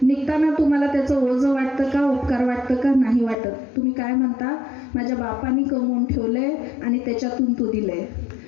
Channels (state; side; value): drops out; right; at 3.4 s